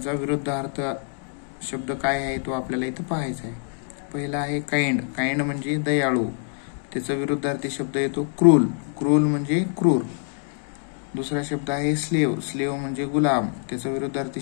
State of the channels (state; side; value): silent; right; 62 dB below the other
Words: विरुद्धार्थ शब्द काय आहे तो आपल्याला इथं पाहायचा आहे. पहिला आहे काइंड म्हणजे दयाळू, त्याचा विरुद्धार्थी शब्द येतो क्रूल म्हणजे क्रूर. दुसरा शब्द आहे स्लेव म्हणजे गुलाम, त्याचा विरुद्धार्थी